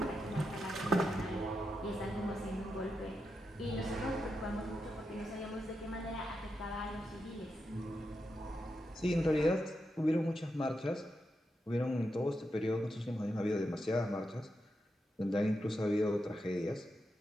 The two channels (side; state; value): both; normal; correlation 0.86